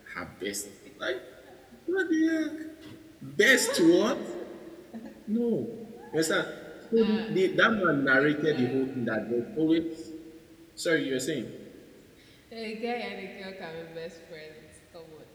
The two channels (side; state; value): both; identical; correlation 1.00